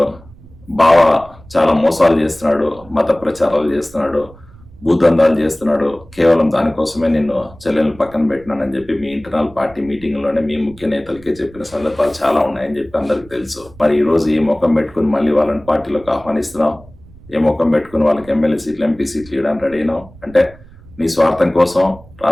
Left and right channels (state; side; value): noise; right; rumble, 22 dB below the sound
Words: బావ చాలా మోసాలు చేస్తున్నాడు, మత ప్రచారాలు చేస్తున్నాడు, భూతందాలు చేస్తున్నాడు. కేవలం దానికోసమే నిన్ను చెల్లెలను పక్కన పెట్టినానని చెప్పి మీ ఇంటర్నల్ పార్టీ మీటింగ్ లోనే మీ ముఖ్య నేతలకే చెప్పిన సందర్భాలు చాలా ఉన్నాయని చెప్పి అందరికి తెలుసు. మరి ఈ రోజు ఈ ముఖం పెట్టుకుని మళ్ళీ వాళ్ళని పార్టీలోకి ఆహ్వానిస్తున్నావు, ఏ ముఖం పెట్టుకుని వాళ్ళకి ఎమ్మెల్యే సీట్లు, ఎంపీ సీట్లు ఇవ్వడానికి రెడీ అయినావు అంటే నీ స్వార్థం కోసం